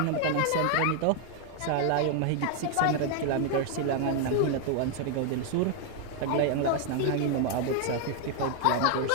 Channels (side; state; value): both; different; correlation 0.00